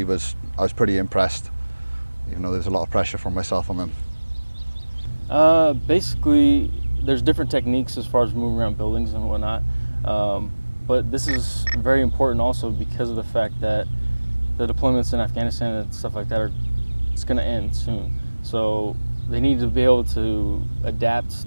I was pretty impressed, even though there's a lot of pressure from myself on them. Basically, there's different techniques as far as moving around buildings and whatnot, but this is very important also because of the fact that the deployments in Afghanistan and stuff like that it's going to end soon. So they need to be able to adapt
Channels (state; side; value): inverted; both; correlation -1.00